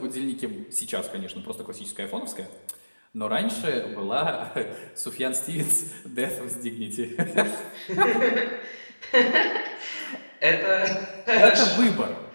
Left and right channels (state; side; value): inverted; both; correlation -1.00